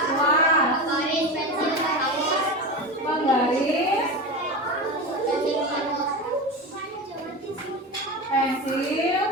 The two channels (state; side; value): normal; both; correlation 0.23